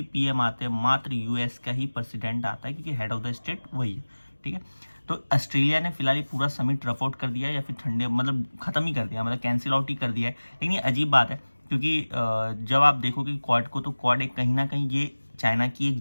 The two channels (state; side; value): inverted; both; correlation -1.00